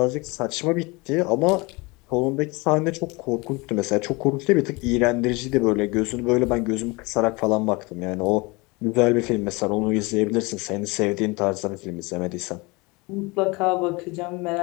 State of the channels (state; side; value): quieter; right; 25.7 dB